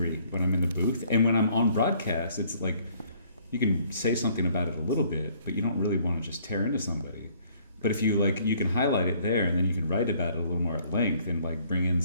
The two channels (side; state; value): both; inverted; correlation -0.62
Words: when I'm in the booth. And when I'm on broadcast, it's like you can say something about it a little bit, but you don't really want to just tear into somebody. But if you you can highlight it there, and then you can write about it a little more at length and bring in